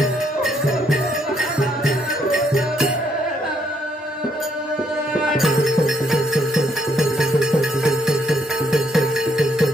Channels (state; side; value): normal; both; correlation 0.72